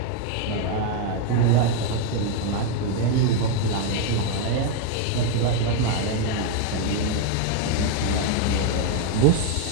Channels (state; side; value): different; both; correlation 0.01